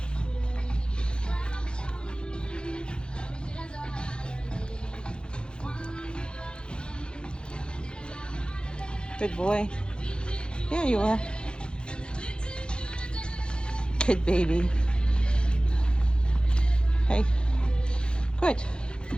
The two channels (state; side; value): late; right; 0.051 ms